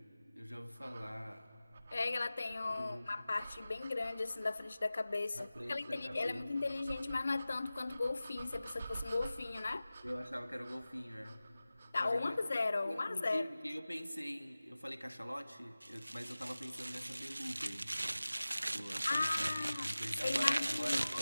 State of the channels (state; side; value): inverted; both; correlation -0.97